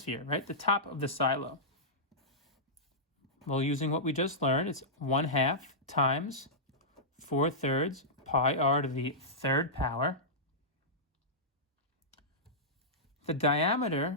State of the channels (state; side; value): normal; both; correlation -0.14